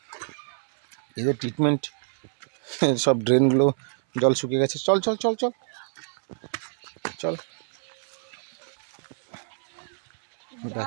এদের ট্রিটমেন্ট, সব ড্রেনগুলো জল শুকিয়ে গেছে। চল চল চল চল চল,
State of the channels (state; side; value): silent; left; 60 dB below the other